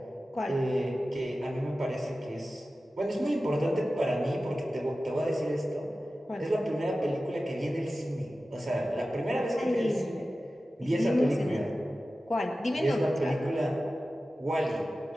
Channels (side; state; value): both; normal; correlation 0.95